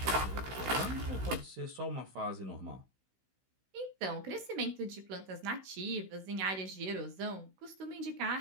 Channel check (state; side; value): late; left; 16 ms